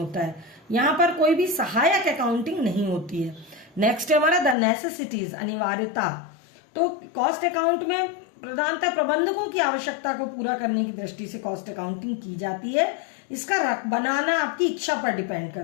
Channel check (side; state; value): right; drops out; at 4.5 s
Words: है, यहां पर कोई भी सहायक अकाउंटिंग नहीं होती है। नेक्स्ट है हमारा द नेसेसिटीज, अनिवार्यता। तो कॉस्ट अकाउंट में प्रधानतः प्रबंधकों की आवश्यकता को पूरा करने की दृष्टि से कॉस्ट अकाउंटिंग की जाती है। इसका बनाना आपकी इच्छा पर डिपेंड